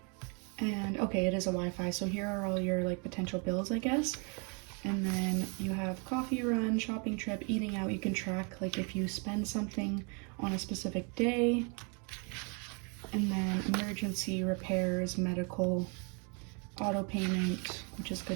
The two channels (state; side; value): quieter; left; 35.0 dB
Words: And okay, it is a Wi-Fi. So here are all your like potential bills, I guess. And then you have coffee run, shopping trip, eating out. You can track like if you spend something on a specific day. And then emergency, repairs, medical, auto payment, which is